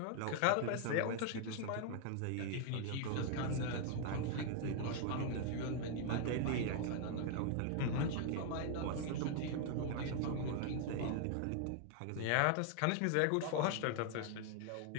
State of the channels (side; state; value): both; different; correlation 0.00